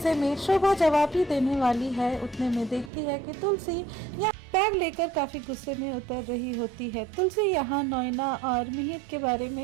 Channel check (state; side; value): drops out; left; at 2.9 s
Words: में शोभा जवाब ही देने वाली है, उतने में देखती है कि तुलसी बैग लेकर काफी गुस्से में उतर रही होती है। तुलसी यहाँ नोएना और मिहिर के बारे